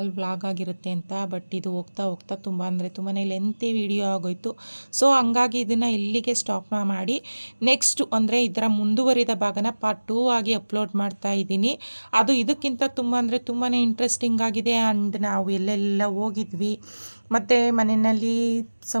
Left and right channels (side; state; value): both; inverted; correlation -1.00